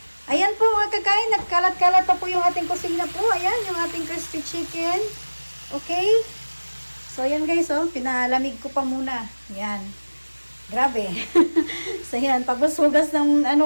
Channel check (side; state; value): both; inverted; correlation -1.00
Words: Ayan po mga kakain, nagkalat-kalat pa po yung ating kusina po. Ayan, yung ating crispy chicken. Okay? So, ayan guys, pinalamig ko pa muna. Ayan. Grabe. So, ayan, paghugas ng,